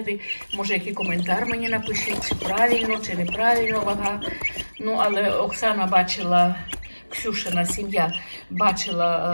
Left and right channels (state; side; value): inverted; both; correlation -1.00